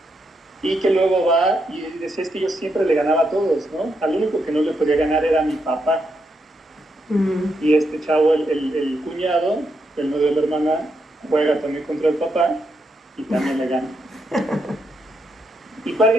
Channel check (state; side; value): normal; both; correlation 0.81